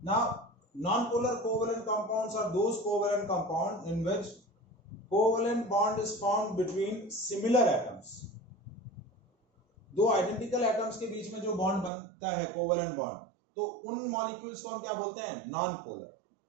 non-polar covalent compounds are those covalent compounds in which covalent bond is formed between similar atoms. दो identical atoms के बीच में जो बॉन्ड बनता है कोवेलेंट बॉन्ड, तो उन मॉलिक्यूल्स को हम क्या बोलते हैं, नॉन पोलर।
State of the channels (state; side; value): drops out; left; at 11.9 s